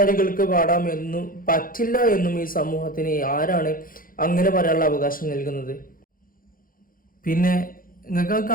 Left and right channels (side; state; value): right; late; 0.41 ms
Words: പാടാമെന്നും പറ്റില്ല എന്നും ഈ സമൂഹത്തിന് ആരാണ് അങ്ങനെ പറയാനുള്ള അവകാശം നൽകുന്നത്? പിന്നെ നിങ്ങൾക്ക്